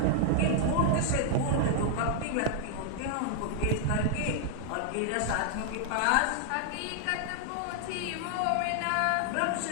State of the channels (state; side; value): different; both; correlation -0.01